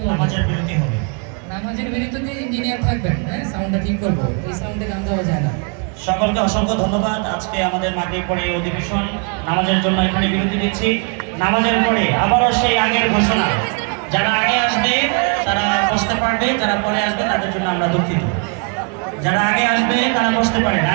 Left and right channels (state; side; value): quieter; left; 37.6 dB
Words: নামাজের বিরতি হবে? নামাজের বিরতিতে ইঞ্জিনিয়ার থাকবেন, হ্যাঁ সাউন্ডটা ঠিক করবো, এই সাউন্ডে গান গাওয়া যায় না। সকলকে অসংখ্য ধন্যবাদ। আজকে আমাদের মাগরিব পরে এই অধিবেশন নামাজের জন্য এখানে বিরতি দিচ্ছি। নামাজের পরে আবারও সেই আগের ঘোষণা, যারা আগে আসবে তারা বসতে পারবে, যারা পরে আসবে তাদের জন্য আমরা দুঃখিত। যারা আগে আসবে তারা বসতে পারে।